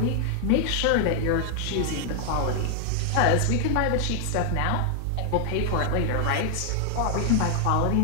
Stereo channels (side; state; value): both; different; correlation 0.00